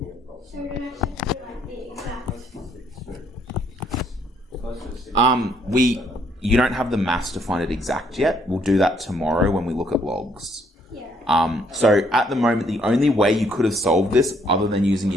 So we don't actually have to do like the exact. You don't have the maths to find it exact yet. We'll do that tomorrow when we look at logs. Yeah. So at the moment, the only way you could have solved this, other than using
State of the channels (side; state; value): both; normal; correlation 0.68